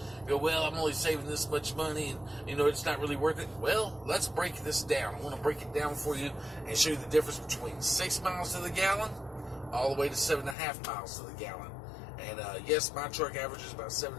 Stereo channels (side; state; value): right; drops out; at 10.6 s